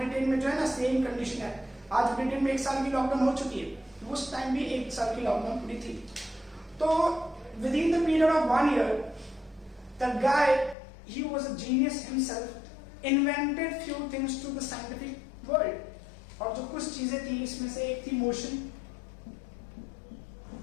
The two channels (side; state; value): right; drops out; at 10.8 s